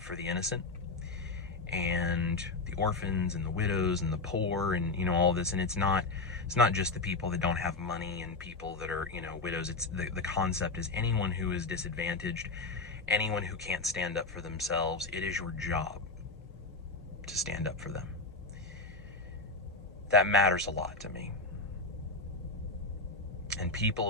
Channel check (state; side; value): quieter; right; 3.5 dB